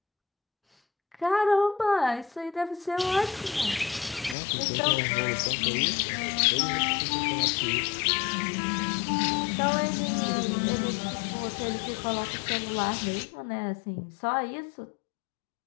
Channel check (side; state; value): right; drops out; at 4.4 s